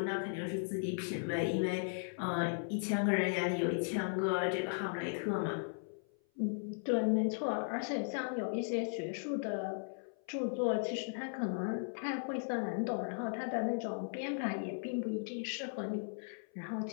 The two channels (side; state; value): right; silent; 53 dB below the other